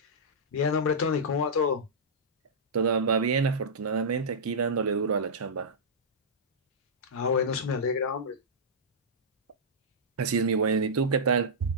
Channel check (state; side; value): normal; both; correlation -0.14